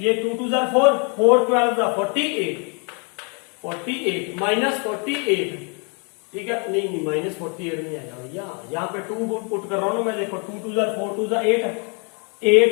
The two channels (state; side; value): quieter; right; 35.9 dB